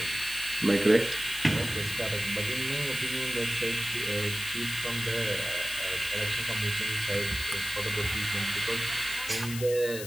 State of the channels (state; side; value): noise; left; hiss, 9 dB below the sound